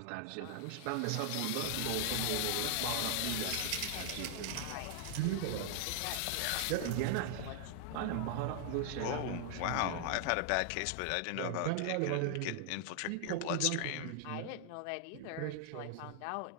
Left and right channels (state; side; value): different; both; correlation 0.00